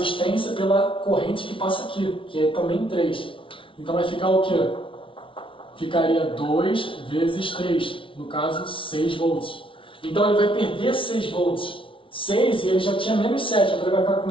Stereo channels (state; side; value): late; right; 0.25 ms